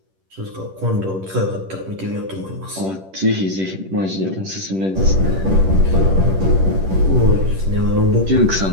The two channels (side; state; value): left; late; 10 ms